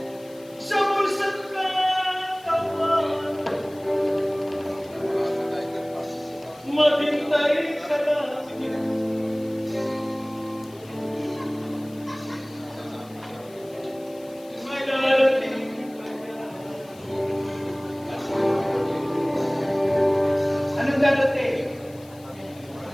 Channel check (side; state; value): left; noise; hiss, 24 dB below the sound